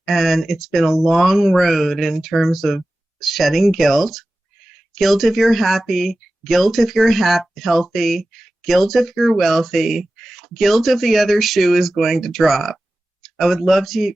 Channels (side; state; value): both; normal; correlation 0.95